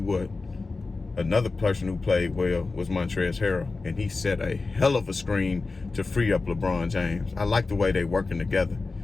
what, another person who played well was Montrezl Harrell, and he set a hell of a screen to free up LeBron James. I like the way they working together.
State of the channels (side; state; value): right; quieter; 3.8 dB